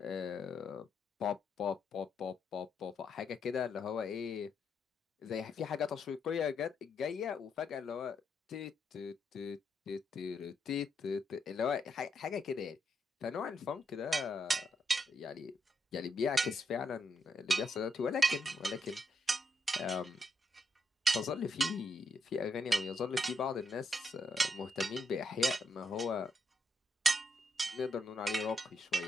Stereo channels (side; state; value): both; normal; correlation 0.79